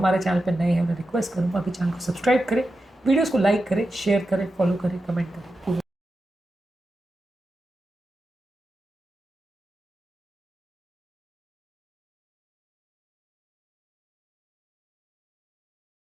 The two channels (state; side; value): normal; both; correlation 0.90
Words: चैनल पर नए हैं उन्हें रिक्वेस्ट करूँगा कि चैनल को सब्सक्राइब करें, वीडियोज़ को लाइक करें, शेयर करें, फॉलो करें, कमेंट करें।